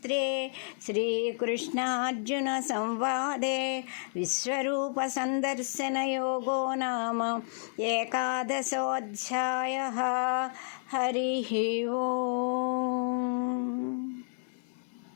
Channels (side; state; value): right; silent; 57 dB below the other